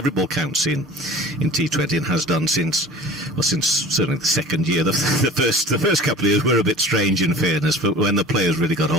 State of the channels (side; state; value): both; normal; correlation 0.42